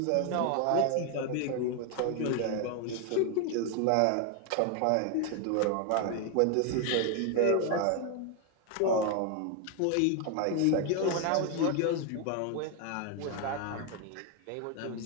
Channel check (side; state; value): both; different; correlation 0.01